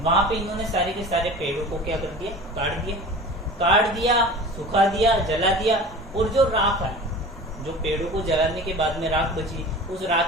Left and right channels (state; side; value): normal; both; correlation 0.38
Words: वहां पे इन्होंने सारे के सारे पेड़ों को क्या कर दिया, काट दिया, सुखा दिया, जला दिया, और जो राख है, जो पेड़ों को जलाने के बाद में राख बची, उस